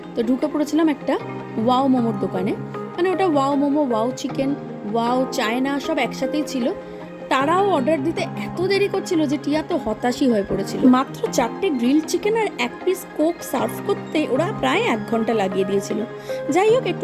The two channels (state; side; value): identical; both; correlation 1.00